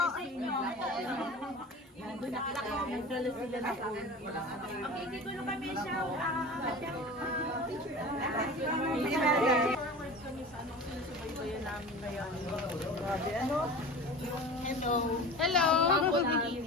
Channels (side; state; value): both; normal; correlation 0.35